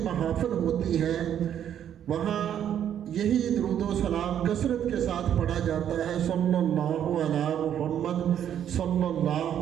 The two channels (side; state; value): left; quieter; 9.8 dB